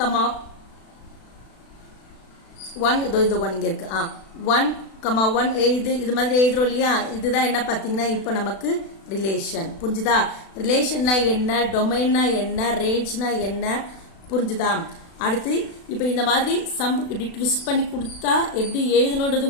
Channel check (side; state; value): right; late; 36 ms